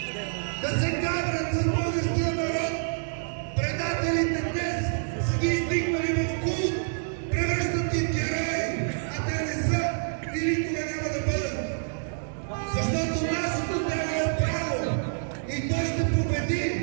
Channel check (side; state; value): left; silent; digital silence